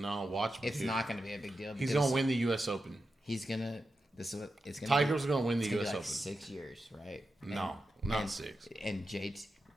No, watch me. It's not going to be a big deal. He's going to win the U.S. Open. He's going to. This is what it's going to be. Tiger's going to win the U.S. Open. 6 years, right? No, not 6. And JT.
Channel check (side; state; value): both; normal; correlation 0.90